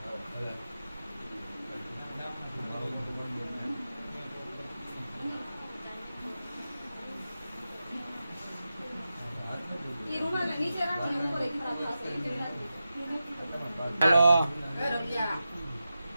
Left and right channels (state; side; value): inverted; both; correlation -0.92